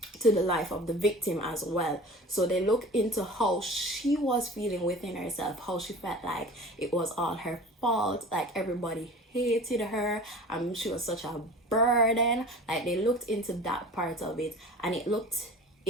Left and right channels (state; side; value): normal; both; correlation 0.40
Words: the life of the victim as well. So they look into how she was feeling within herself, how she felt like it was all her fault, like everybody hated her, she was such a burden. Like, they looked into that part of it, and it looked